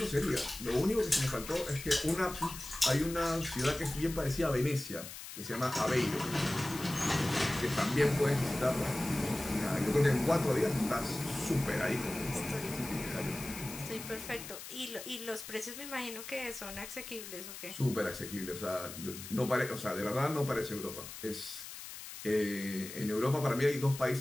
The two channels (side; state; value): left; noise; hiss, 11 dB below the sound